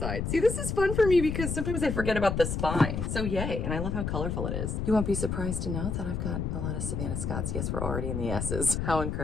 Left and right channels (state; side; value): noise; left; rumble, 2 dB below the sound